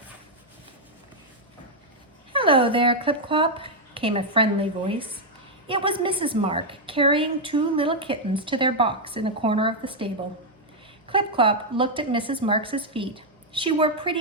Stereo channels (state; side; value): normal; both; correlation -0.01